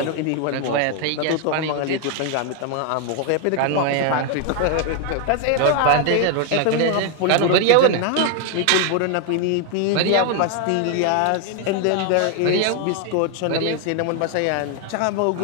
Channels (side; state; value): both; different; correlation 0.00